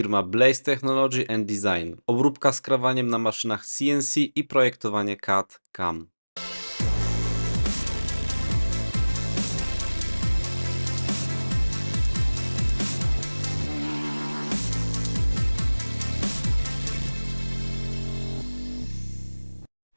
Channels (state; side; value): inverted; both; correlation -1.00